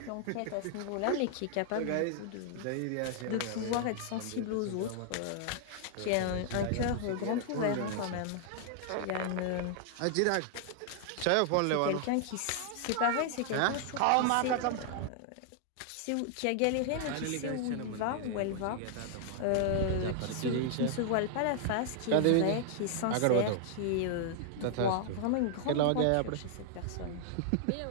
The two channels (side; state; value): both; different; correlation 0.00